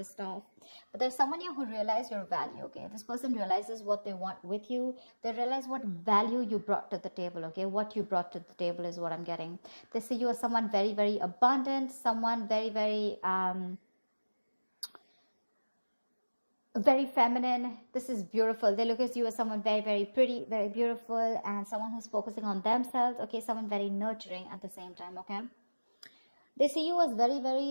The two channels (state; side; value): inverted; both; correlation -1.00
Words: off. But there's someone here who realized your value, okay? This person realizes what they want with you. They realize what value you brought to the table, okay? What you brought to the table is what I'm getting. They see you as someone very, very abundant, someone very, very feminine. This is beautiful. They look at you as someone very, very pretty, very beautiful, and someone who's focusing on themselves, okay? Someone very nurturing at the same time, okay? They see you as very,